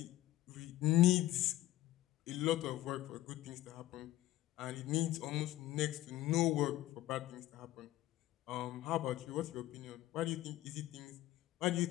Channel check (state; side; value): quieter; right; 15.3 dB